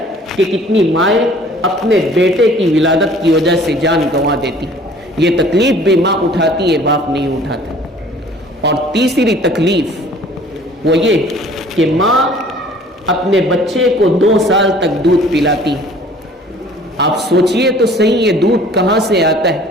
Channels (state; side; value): normal; both; correlation 0.52